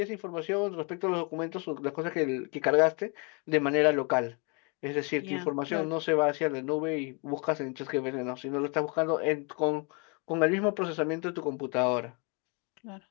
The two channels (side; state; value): right; quieter; 33.7 dB